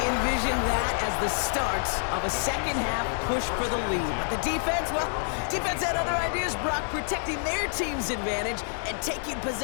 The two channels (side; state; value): right; silent; 60 dB below the other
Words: envisioned that as the start of a second-half push for the lead. But the defense, well, defense had other ideas, Brock, protecting their team's advantage and taking